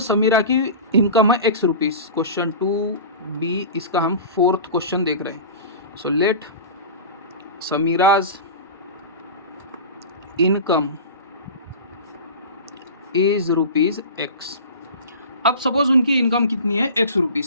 की इनकम है X रुपीज़, क्वेश्चन 2B, इसका हम 4th क्वेश्चन देख रहे हैं। So let Sameera's income is ₹X। अब सपोज उनकी इनकम कितनी है X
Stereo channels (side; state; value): both; inverted; correlation -0.32